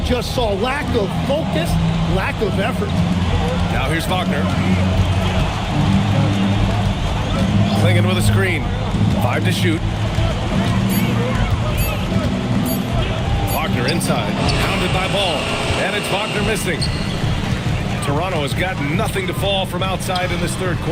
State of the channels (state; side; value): identical; both; correlation 1.00